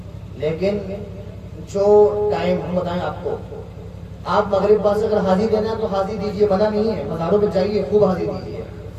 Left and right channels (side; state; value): both; identical; correlation 1.00